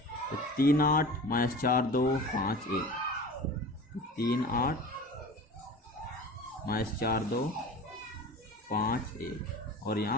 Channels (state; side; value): normal; both; correlation 0.37